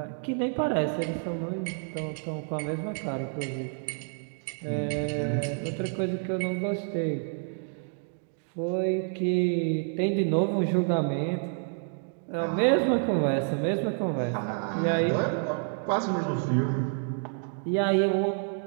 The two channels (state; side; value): silent; left; 55 dB below the other